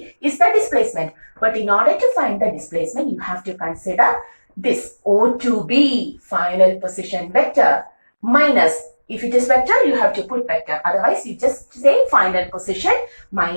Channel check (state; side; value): inverted; both; correlation -1.00